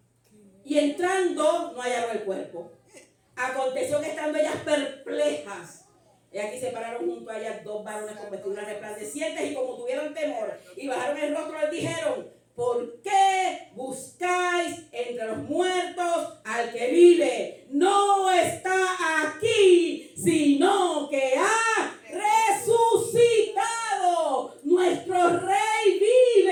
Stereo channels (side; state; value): both; identical; correlation 1.00